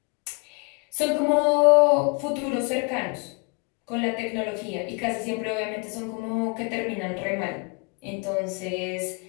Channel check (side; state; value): right; quieter; 33.3 dB